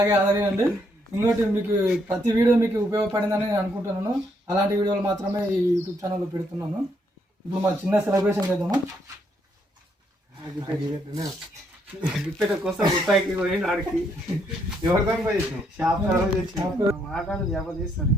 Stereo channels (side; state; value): both; normal; correlation 0.73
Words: ఆదరించండి. ఇంకోటి మీకు ప్రతి వీడియో మీకు ఉపయోగపడిందని నేను అనుకుంటున్నాను. అలాంటి వీడియోలు మాత్రమే ఈ యూట్యూబ్ ఛానల్లో పెడుతున్నాను. ఇప్పుడు మన చిన్న సెలబ్రేషన్ చేద్దాము. కోసం రూపాయికి పోయింది ఆడికి ఎవరితో షాప్